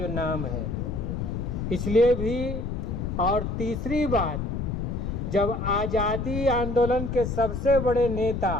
नाम है। इसलिए भी, और तीसरी बात, जब आज़ादी आंदोलन के सबसे बड़े नेता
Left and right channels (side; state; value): left; noise; rumble, 3 dB below the sound